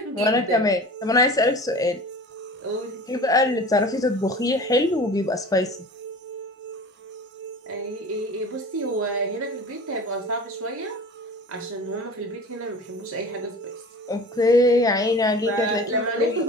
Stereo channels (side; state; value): both; normal; correlation 0.38